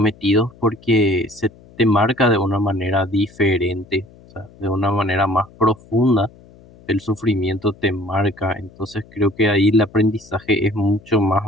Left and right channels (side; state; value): left; noise; hum, 25 dB below the sound